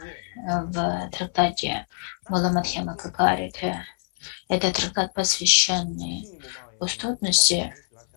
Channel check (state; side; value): silent; right; 62 dB below the other